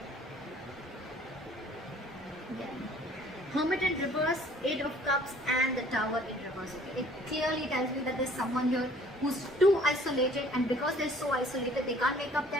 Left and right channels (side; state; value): both; normal; correlation 0.55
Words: Again. Hermit in reverse, Eight of Cups, and the Tower in reverse. Okay? It clearly tells me that there's someone here who's too isolated, and because they're so isolated, they can't make up